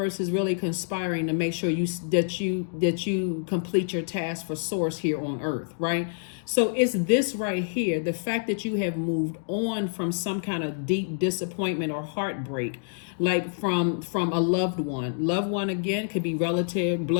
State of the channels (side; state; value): right; silent; digital silence